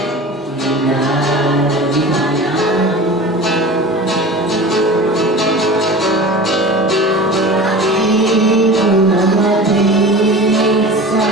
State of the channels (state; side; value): normal; both; correlation 0.35